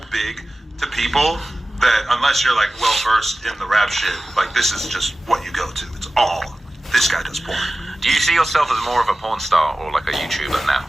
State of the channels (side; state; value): both; normal; correlation 0.96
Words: big to people that unless you're like well versed in the rap shit, like this is just what you go to. It's all this guy does porn. Do you see yourself as more of a porn star or like a YouTuber now?